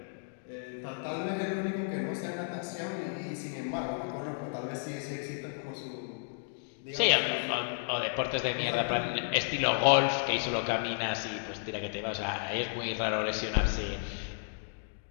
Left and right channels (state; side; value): silent; right; digital silence